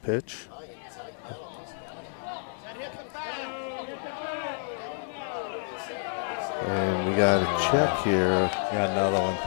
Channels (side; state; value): right; silent; digital silence